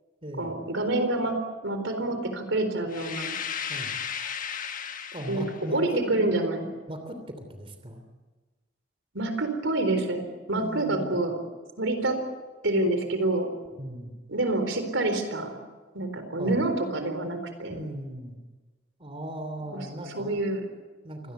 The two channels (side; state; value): both; normal; correlation 0.07